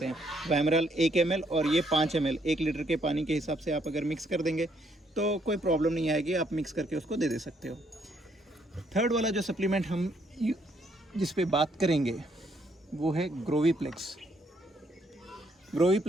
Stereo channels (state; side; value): normal; both; correlation 0.70